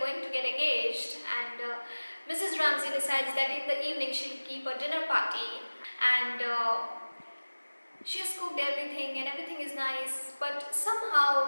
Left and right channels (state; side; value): inverted; both; correlation -1.00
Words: to get engaged. And Mrs. Ramsay decides that in the evening she'll keep a dinner party, and she has cooked everything and everything is nice, but